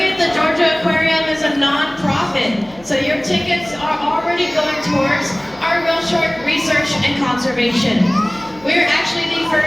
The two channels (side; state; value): left; noise; hum, 26 dB below the sound